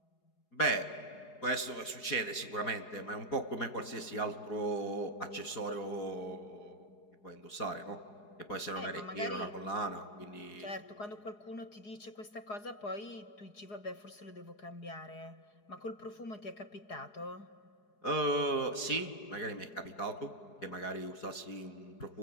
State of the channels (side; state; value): right; late; 4.8 ms